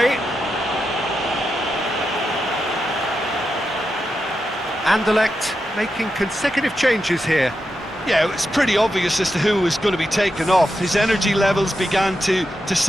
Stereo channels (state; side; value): normal; both; correlation 0.87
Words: Anderlecht making consecutive changes here. Yeah, it's pretty obvious as to who was going to be taken off. His energy levels began to